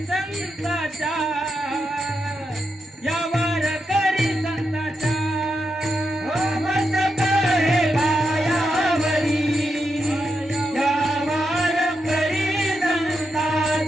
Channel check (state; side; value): normal; both; correlation 0.85